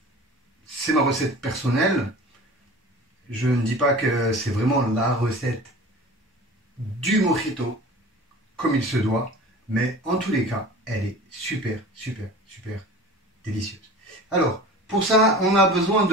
c'est ma recette personnelle. Je ne dis pas que c'est vraiment la recette du mojito, comme il se doit, mais en tous les cas, elle est super, super, super délicieuse. Alors, pour ça, on a besoin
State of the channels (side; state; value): both; normal; correlation 0.39